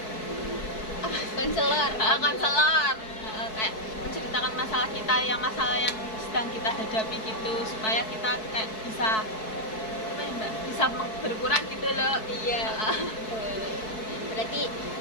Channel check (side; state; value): right; late; 4.6 ms